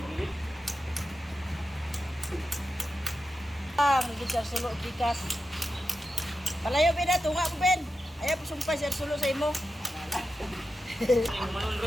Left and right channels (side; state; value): both; normal; correlation 0.91